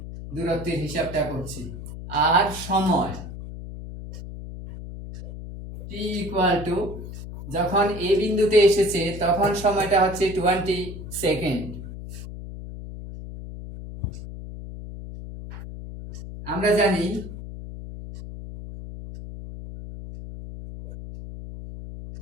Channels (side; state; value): left; noise; hum, 11 dB below the sound